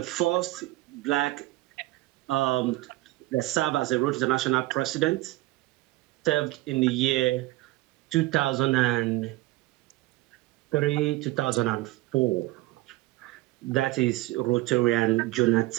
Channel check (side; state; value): left; quieter; 18.8 dB